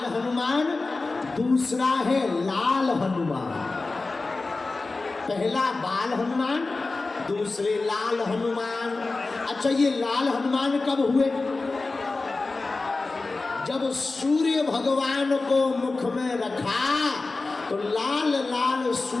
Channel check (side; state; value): right; quieter; 3.6 dB